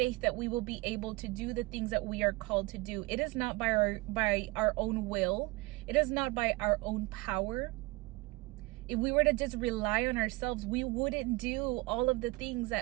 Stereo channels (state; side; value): quieter; left; 22.4 dB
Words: we will be able to do the things that we are called to do. It is not by our own will. It is not by our own power. If we were to just rely on ourselves, we wouldn't do all of the things